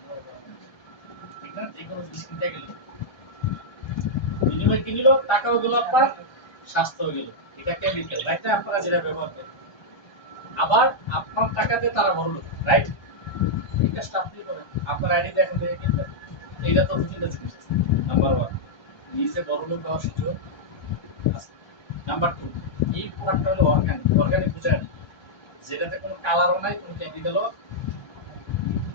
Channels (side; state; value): right; late; 1.2 ms